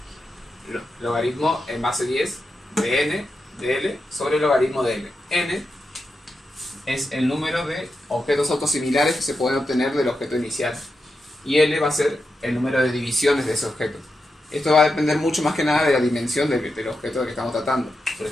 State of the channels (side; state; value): both; normal; correlation 0.88